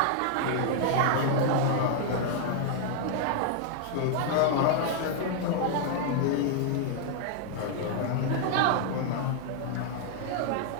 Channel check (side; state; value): both; different; correlation -0.01